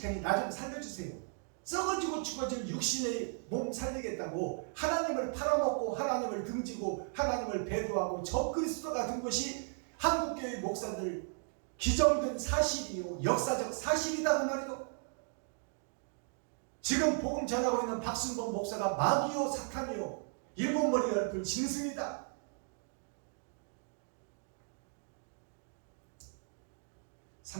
테니 나 좀 살려주세요. 썩어지고 죽어질 육신의 몸 살리겠다고 하나님을 팔아먹고 하나님을 등지고 하나님을 배도하고 적그리스도가 된 것이 한국교회 목사들 기정된 사실이요, 역사적 사실이다 그 말이요. 지금 복음 전하고 있는 박순범 목사가 마귀요 사탄이요 일곱머리 열풀 짐승이다.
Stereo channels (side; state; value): left; silent; 54 dB below the other